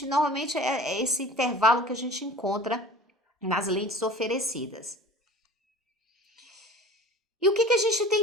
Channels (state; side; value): normal; both; correlation 0.42